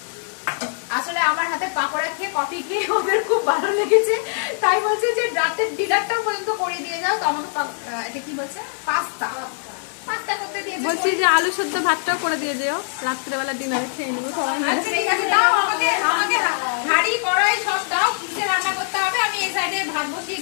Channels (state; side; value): silent; right; digital silence